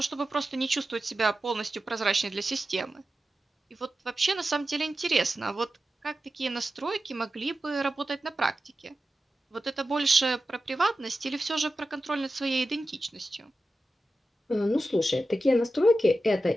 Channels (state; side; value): normal; both; correlation 0.93